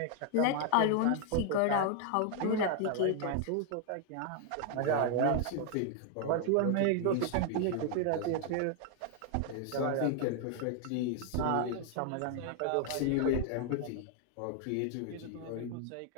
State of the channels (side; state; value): both; different; correlation 0.00